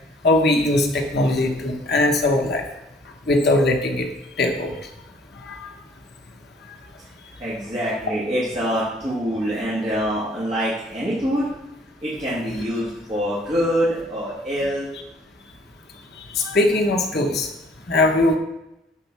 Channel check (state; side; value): normal; both; correlation 0.57